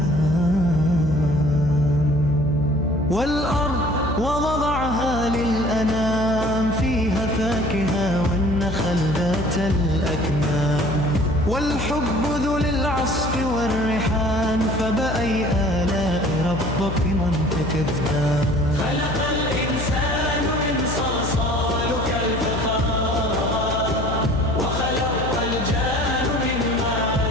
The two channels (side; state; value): left; noise; hum, 5 dB below the sound